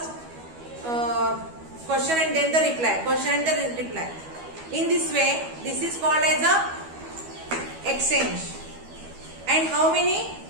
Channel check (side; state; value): left; late; 12 ms